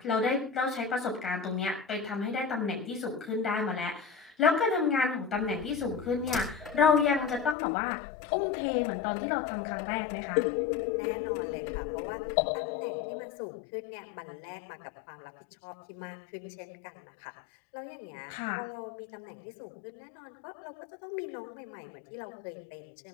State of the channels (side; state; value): right; drops out; at 7.6 s